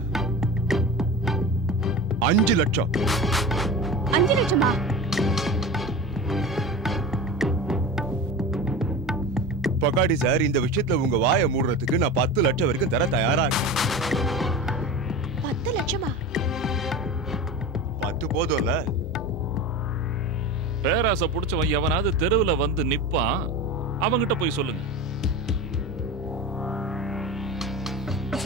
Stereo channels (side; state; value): both; normal; correlation 0.30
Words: அஞ்சு லட்சம்? 5 லட்சமா? பகாடி சார், இந்த விஷயத்துல உங்க வாயை மூடுறதுக்கு நான் 10 லட்சம் வரைக்கும் தர தயாரா இருக்கேன். 10 லட்சமா? 10 போதும்ல? பேராசை புடிச்சவன் எவனாவது தெருவுல வந்து நிப்பான், அவங்கிட்ட போய் சொல்லுங்க.